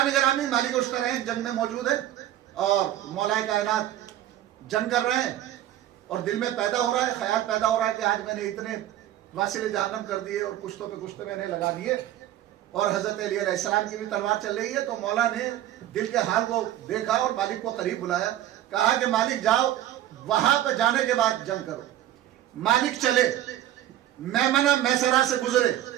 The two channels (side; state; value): left; quieter; 12.9 dB